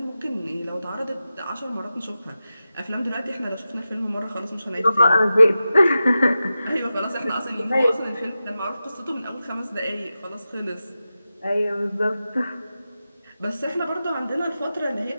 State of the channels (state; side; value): inverted; both; correlation -0.92